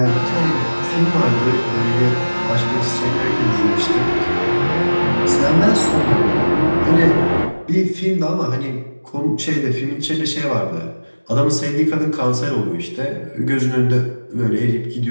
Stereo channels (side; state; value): both; inverted; correlation -1.00